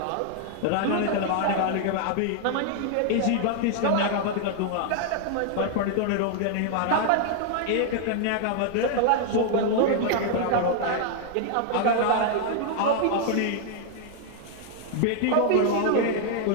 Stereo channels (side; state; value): both; different; correlation 0.00